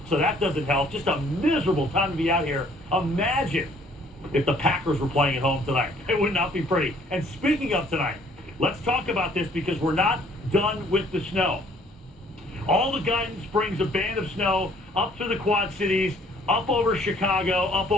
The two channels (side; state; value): both; normal; correlation 0.59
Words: so that doesn't help. Just a miserable time to be out here. Imagine if the Packers were playing at home tonight. It would not be pretty. And speaking of tonight, let's talk about this because we're not done with the snow. All the guidance brings a band of snow up through the Quad Cities, up over Chicago, up